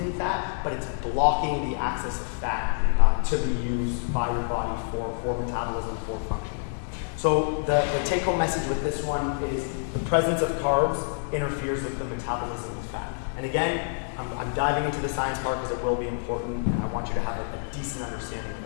fat, but it's blocking the access of fat to be used by your body for metabolism, for functioning. So the take-home message with this one is the presence of carbs interferes with the metabolism of fat. And again, I'm diving into the science part because it will be important, and I want you to have a decent understanding of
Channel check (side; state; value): right; silent; digital silence